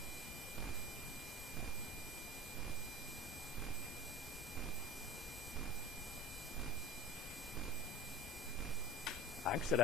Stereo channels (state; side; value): normal; both; correlation 0.33